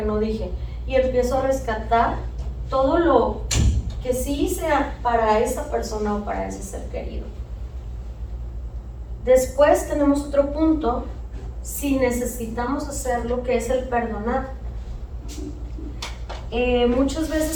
no dije. Y empiezo a rescatar todo lo que sí hice para esa persona o para ese ser querido. Después tenemos otro punto, si necesitamos hacerlo, que es el perdonar. Muchas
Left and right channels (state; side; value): identical; both; correlation 1.00